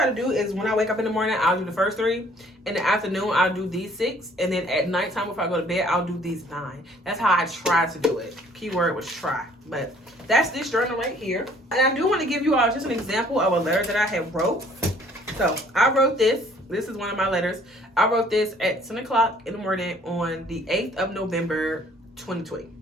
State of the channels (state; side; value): normal; both; correlation 0.58